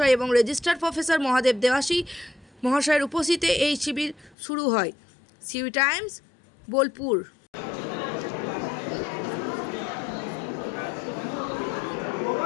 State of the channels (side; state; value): right; drops out; at 4.4 s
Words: এবং রেজিস্ট্রার প্রফেসর মহাদেব দেবাশী মহাশয়ের উপস্থিতিতে এই শিবির শুরু হয়। CU Times, Bolpur.